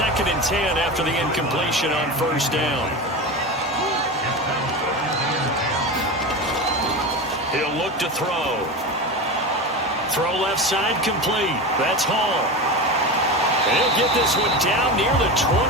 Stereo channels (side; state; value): both; normal; correlation 0.24